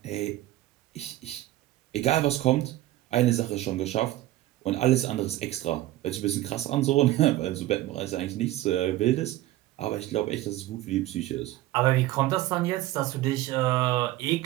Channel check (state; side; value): quieter; left; 15.8 dB